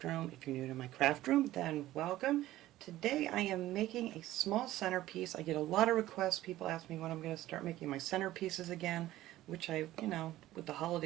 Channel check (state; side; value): quieter; left; 15.3 dB